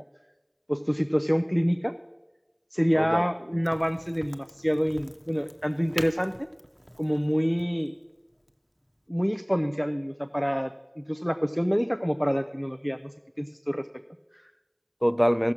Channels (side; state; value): both; identical; correlation 1.00